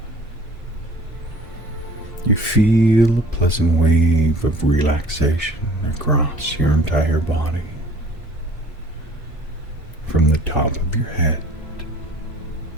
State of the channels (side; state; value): both; normal; correlation 0.51